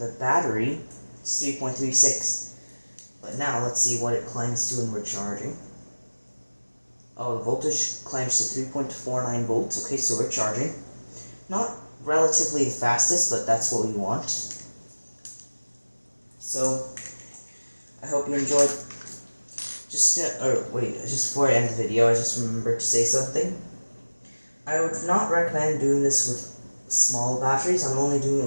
battery, it's 3.36. But now let's see what it climbs to when we're charging. Oh, the voltage climbs to 3.49 volts. Okay, so we're charging. Not relatively the fastest, but that's what we want. So, I hope you enjoyed. Just before I end the video, I just remembered to say something. I would not recommend doing this with small batteries. I'm only doing it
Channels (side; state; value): both; inverted; correlation -1.00